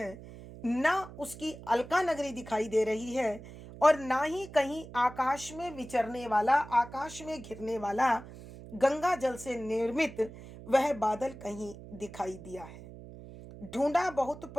ना उसकी अलका नगरी दिखाई दे रही है, और ना ही कहीं आकाश में विचरने वाला, आकाश में घिरने वाला गंगा जल से निर्मित वह बादल कहीं दिखाई दिया है। ढूंढा बहुत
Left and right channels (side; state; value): right; noise; hum, 15 dB below the sound